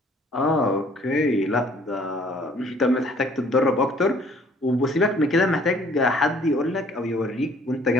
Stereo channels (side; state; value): both; normal; correlation 0.58